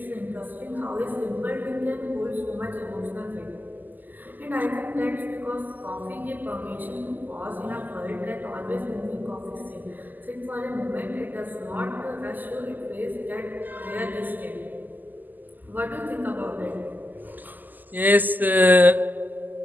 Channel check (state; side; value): late; left; 0.086 ms